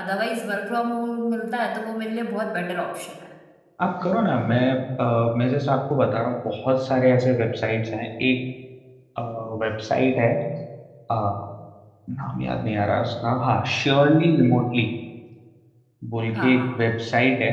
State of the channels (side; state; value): both; identical; correlation 1.00